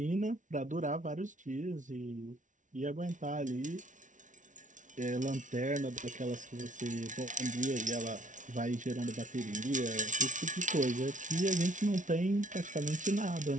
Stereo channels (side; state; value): left; late; 0.37 ms